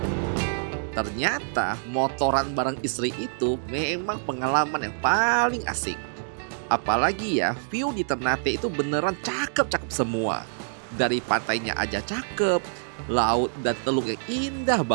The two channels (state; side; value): silent; left; digital silence